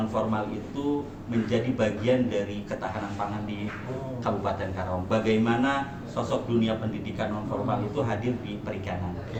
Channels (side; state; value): both; identical; correlation 1.00